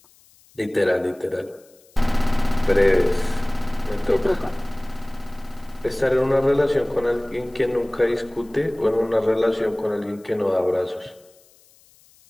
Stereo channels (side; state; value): left; noise; hiss, 30 dB below the sound